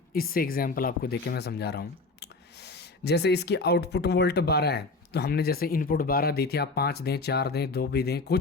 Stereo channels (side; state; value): right; quieter; 3.5 dB